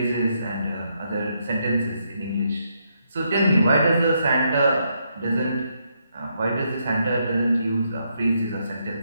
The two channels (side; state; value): both; inverted; correlation -0.77